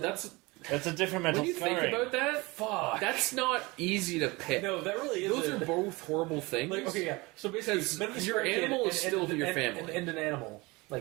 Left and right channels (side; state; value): left; quieter; 23.8 dB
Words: a different mental when you scarring. think about that, fuck. that's not easy to pick. No, that really isn't. Those are both horrible things. Like, okay, yeah. So basically, Because mentally your scarred kid animal is still your family. and an animal,